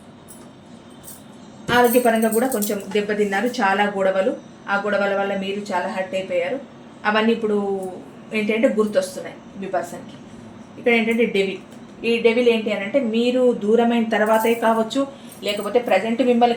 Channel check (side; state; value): both; identical; correlation 1.00